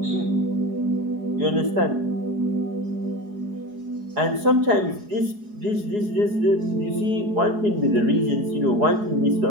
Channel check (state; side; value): late; left; 4.8 ms